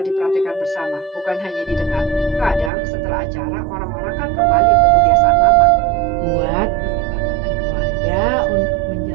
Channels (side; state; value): left; drops out; at 2.7 s